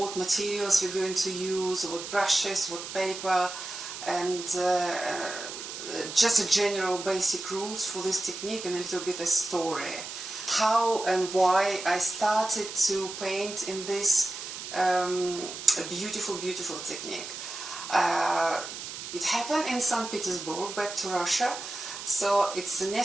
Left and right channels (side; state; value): right; noise; hiss, 9 dB below the sound